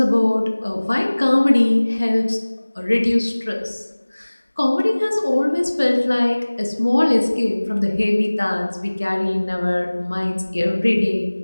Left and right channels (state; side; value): inverted; both; correlation -1.00